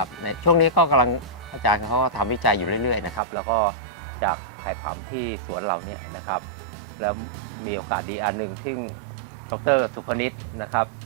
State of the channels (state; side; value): drops out; left; at 3.2 s